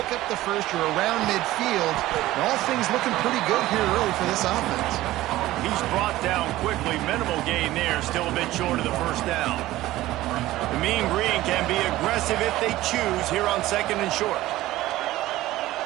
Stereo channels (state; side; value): quieter; left; 16.3 dB